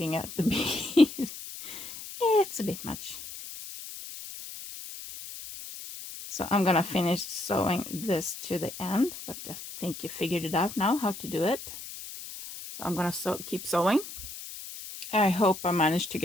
at the bead. It's a bit much. So I'm gonna finish sewing this to the end, but I think you figured it out now how to do it. So I'm gonna keep sewing. I hope I managed to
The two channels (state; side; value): noise; left; hiss, 11 dB below the sound